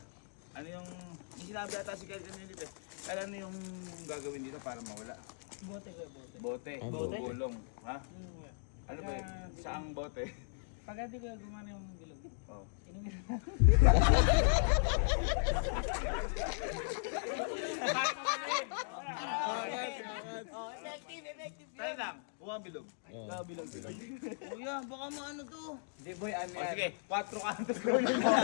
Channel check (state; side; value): silent; right; digital silence